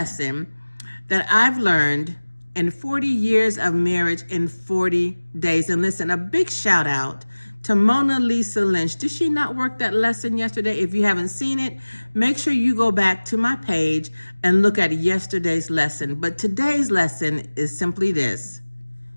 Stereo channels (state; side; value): inverted; both; correlation -1.00